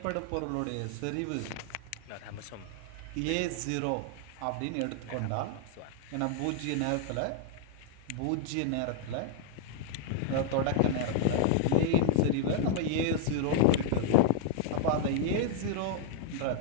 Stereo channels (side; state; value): both; different; correlation -0.01